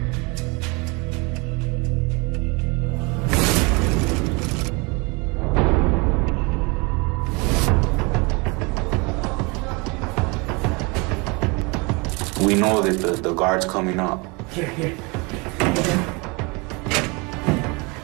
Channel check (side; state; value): left; quieter; 28.5 dB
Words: We know that the guard's coming up. Here.